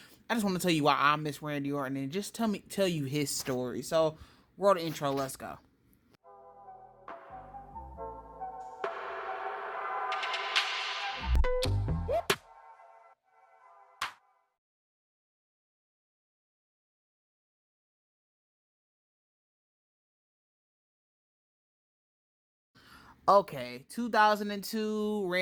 I just want to tell you why I miss Randy Orton, and just tell you his story. So, roll the intro. Let's go. Okay, 2002,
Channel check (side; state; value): both; identical; correlation 1.00